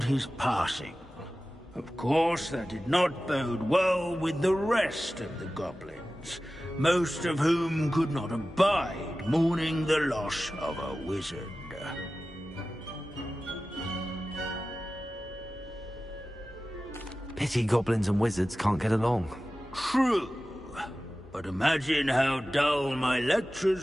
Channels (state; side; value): normal; both; correlation 0.95